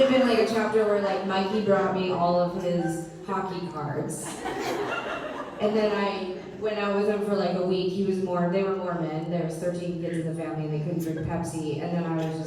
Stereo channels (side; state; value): both; identical; correlation 1.00